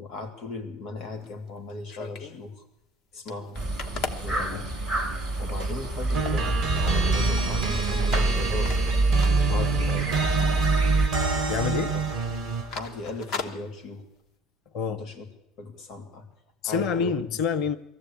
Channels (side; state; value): both; normal; correlation 0.57